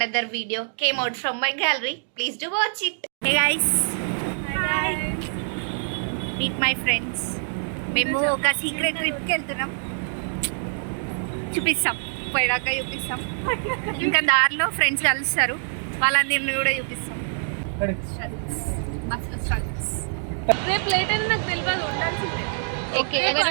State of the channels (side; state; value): left; silent; digital silence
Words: video came out from my gallery. Please do watch it. Hey guys. Hi. Meet my friends. మేము ఒక secret ట్రిప్కి వెళ్తున్నాం. చూపిస్తాం, పోయాక చూపిస్తాం. ఇంకా దారిలో friends కలుస్తారు, వాళ్ళందరినీ కూడా చూపిస్తాం. రేపు లేట్ అయినా నాకు తెలియదు, ఉండాల్సిందే. ఓకే,